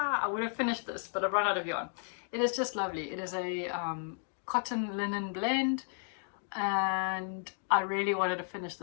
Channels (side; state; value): right; silent; 55 dB below the other